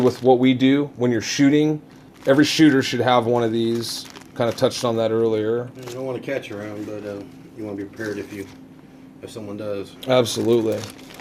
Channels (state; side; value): identical; both; correlation 1.00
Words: what we do when you're shooting. Every shooter should have one of these. kind of touched on that earlier. You don't want to catch around, but you want to be prepared if someone does. Absolutely.